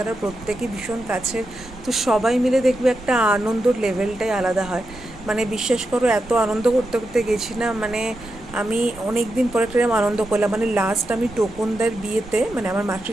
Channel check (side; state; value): right; noise; rumble, 18 dB below the sound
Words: প্রত্যেকে ভীষণ কাছের। তো সবাই মিলে দেখবে একটা আনন্দর লেভেলটাই আলাদা হয়। মানে বিশ্বাস করো এত আনন্দ করতে করতে গেছি না, মানে আমি অনেক দিন পরে একটা আনন্দ করলাম। মানে লাস্ট আমি টোকনদার বিয়েতে, মানে আমার